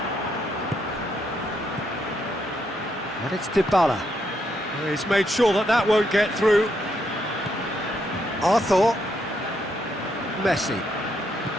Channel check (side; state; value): both; normal; correlation 0.77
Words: And it's Dybala. He's made sure that that won't get through. Arthur. Messi.